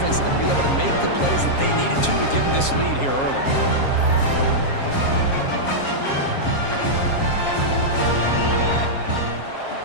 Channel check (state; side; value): late; right; 7.4 ms